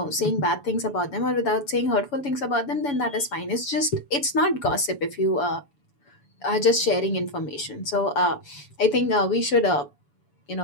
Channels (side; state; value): right; late; 7.0 ms